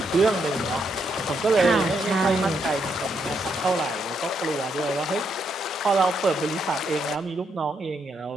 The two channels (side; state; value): both; normal; correlation 0.77